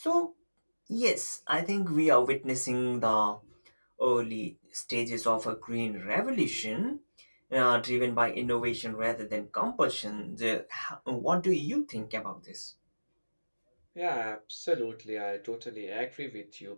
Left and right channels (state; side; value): inverted; both; correlation -1.00